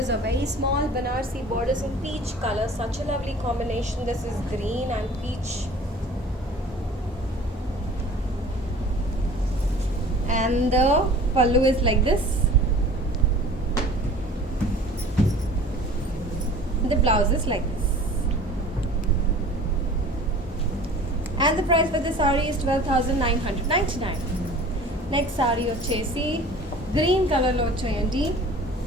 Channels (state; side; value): normal; both; correlation 0.45